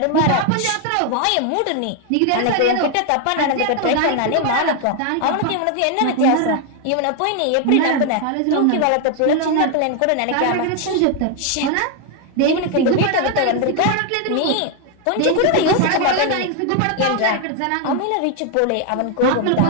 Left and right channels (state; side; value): different; both; correlation 0.00